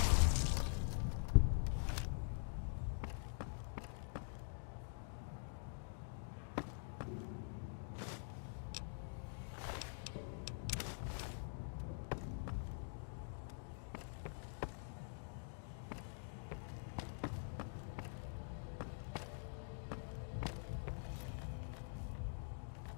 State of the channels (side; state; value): right; silent; digital silence